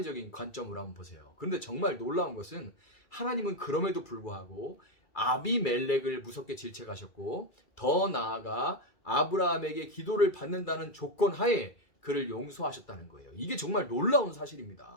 관점으로 한번 보세요. 그런데 정말 놀라운 것은 하나님은 그럼에도 불구하고 아비멜렉을 무섭게 질책하셨고 더 나아가 아브라함에게 기도를 받는다는 조건 하에 그를 용서하셨다는 거예요. 이게 정말 놀라운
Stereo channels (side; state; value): right; late; 2.3 ms